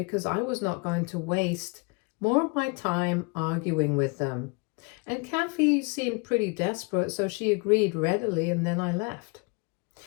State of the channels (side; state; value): right; quieter; 31.1 dB